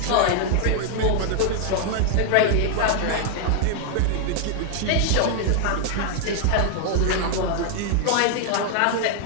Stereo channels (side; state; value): both; different; correlation 0.00